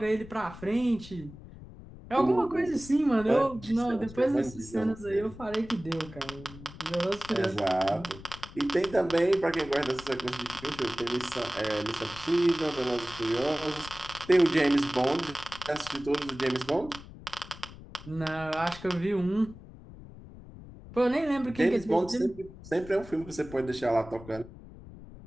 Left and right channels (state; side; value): noise; left; rumble, 16 dB below the sound